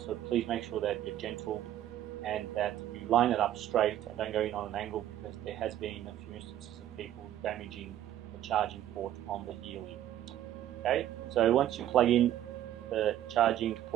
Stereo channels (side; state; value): left; quieter; 12.2 dB